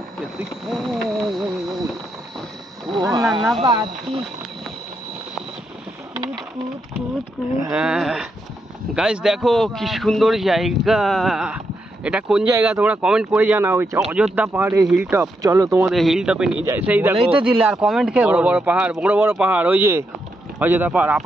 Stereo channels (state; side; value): normal; both; correlation 0.81